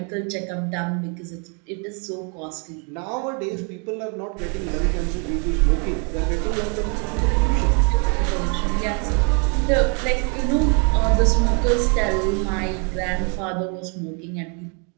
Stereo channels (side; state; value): left; quieter; 36.8 dB